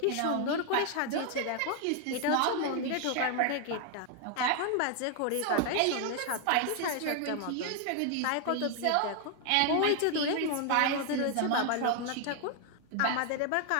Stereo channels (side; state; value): both; different; correlation 0.00